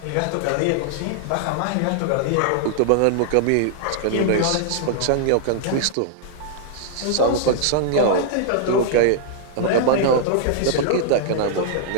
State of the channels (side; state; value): both; different; correlation -0.01